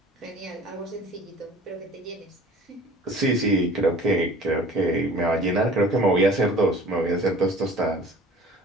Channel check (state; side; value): normal; both; correlation 0.46